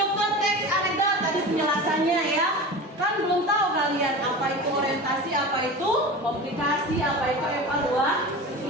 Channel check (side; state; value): both; normal; correlation 0.31